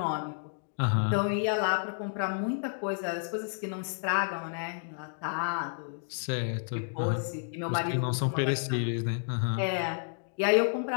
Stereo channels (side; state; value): right; silent; digital silence